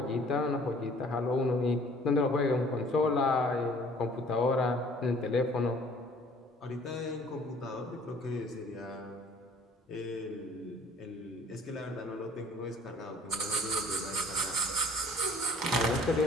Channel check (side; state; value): both; normal; correlation 0.54